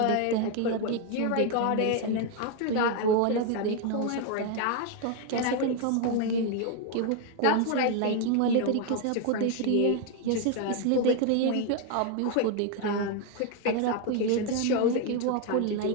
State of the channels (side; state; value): both; different; correlation 0.01